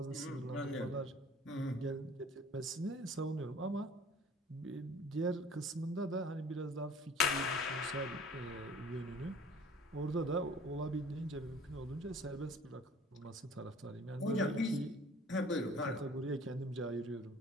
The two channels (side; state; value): both; normal; correlation 0.48